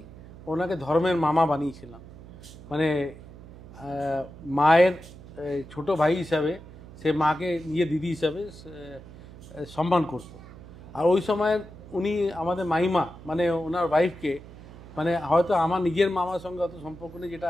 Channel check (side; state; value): right; noise; hum, 17 dB below the sound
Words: ওনাকে ধর্মের মামা বানিয়েছিলাম। মানে মায়ের ছোট ভাই হিসাবে সে মাকে নিজে দিদি হিসাবে সম্মান করতো। আর ওই সময় উনি আমাদের মাইমা মানে ওনার ওয়াইফকে, মানে হয়তো আমার নিজের মামার সঙ্গে অত সম্পর্ক নেই